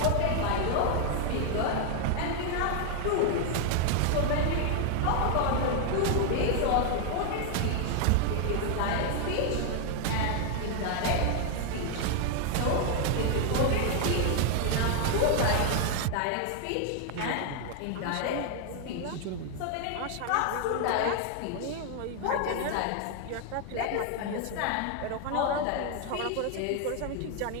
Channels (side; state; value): both; different; correlation 0.00